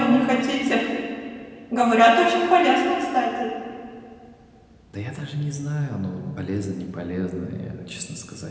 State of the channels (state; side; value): identical; both; correlation 1.00